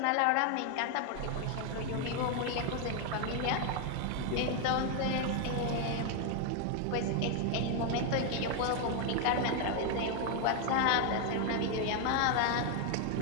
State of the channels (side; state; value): both; different; correlation 0.01